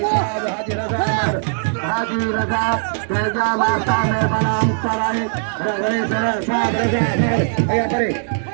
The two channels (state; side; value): silent; left; 66 dB below the other